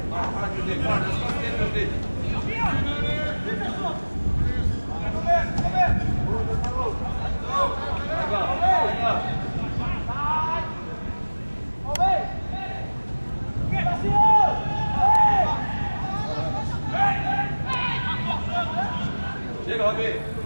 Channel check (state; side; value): inverted; both; correlation -1.00